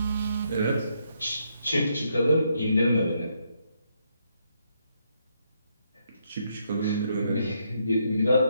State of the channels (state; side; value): inverted; both; correlation -0.76